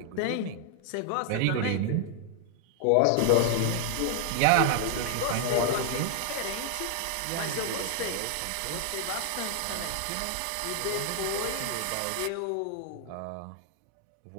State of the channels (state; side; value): different; both; correlation 0.00